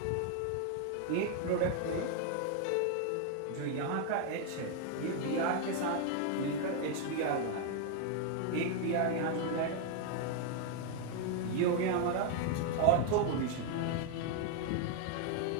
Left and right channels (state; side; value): different; both; correlation 0.00